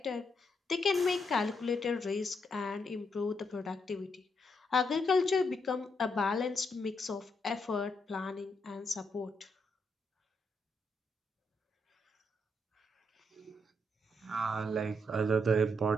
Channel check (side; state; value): both; normal; correlation 0.79